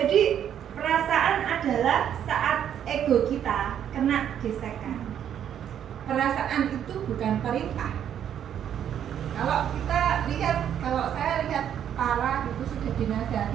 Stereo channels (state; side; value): quieter; left; 9.6 dB